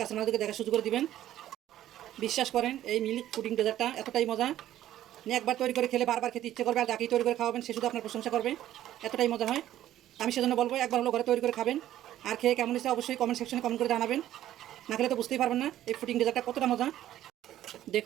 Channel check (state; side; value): quieter; left; 12.8 dB